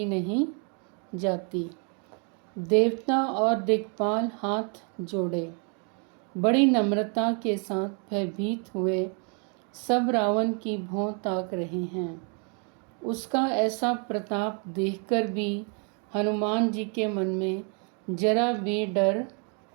नहीं जाती। देवता और दिक्पाल हाथ जोड़े बड़ी नम्रता के साथ भयभीत हुए सब रावण की भौं ताक रहे हैं। उसका ऐसा प्रताप देखकर भी हनुमान जी के मन में जरा भी डर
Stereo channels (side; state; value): left; quieter; 39.0 dB